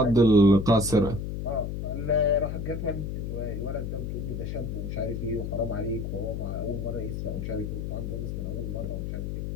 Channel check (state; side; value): noise; left; hum, 4 dB below the sound